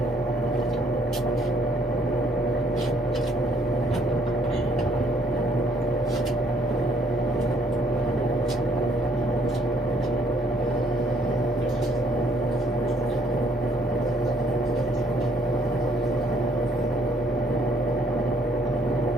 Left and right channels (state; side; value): normal; both; correlation 0.66